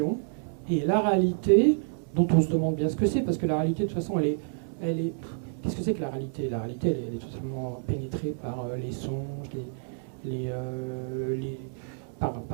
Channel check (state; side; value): silent; left; digital silence